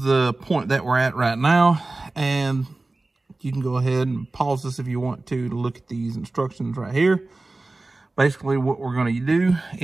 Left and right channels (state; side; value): quieter; left; 3.1 dB